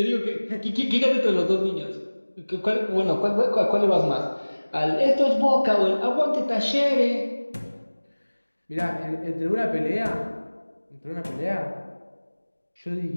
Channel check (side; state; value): both; inverted; correlation -1.00